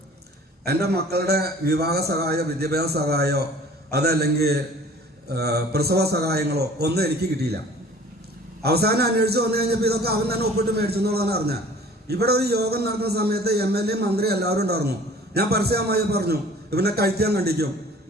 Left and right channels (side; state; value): both; normal; correlation 0.49